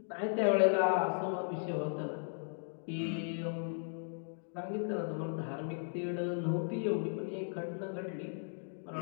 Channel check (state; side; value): silent; right; digital silence